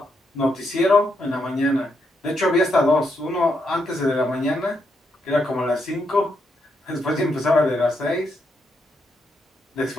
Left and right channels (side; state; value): both; normal; correlation 0.79